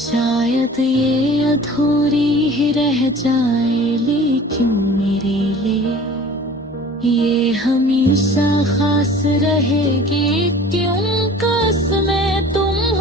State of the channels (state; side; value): normal; both; correlation 0.44